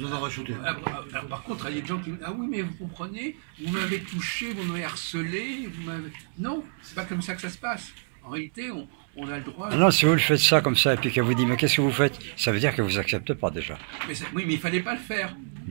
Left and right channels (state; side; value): silent; left; 60 dB below the other